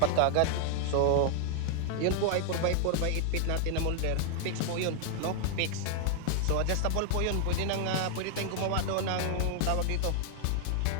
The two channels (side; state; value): both; different; correlation 0.00